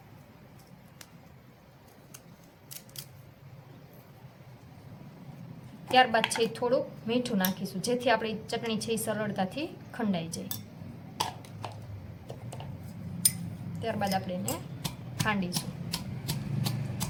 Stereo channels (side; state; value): both; identical; correlation 1.00